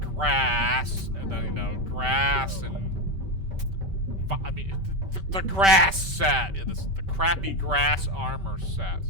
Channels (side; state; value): left; late; 5.2 ms